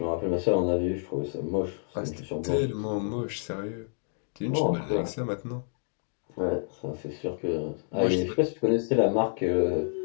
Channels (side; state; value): right; silent; digital silence